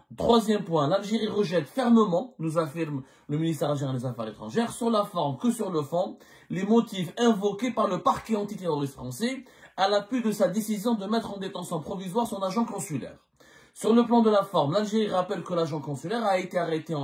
Troisième point, l'Algérie rejette fermement, nous affirme le ministère algérien des Affaires étrangères, sur la forme que sur le fond, les motifs invoqués par le parquet antiterroriste français à l'appui de sa décision de mettre en détention provisoire son agent consulaire. Sur le plan de la forme, l'Algérie rappelle que l'agent consulaire a été arrêté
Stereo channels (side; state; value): both; identical; correlation 1.00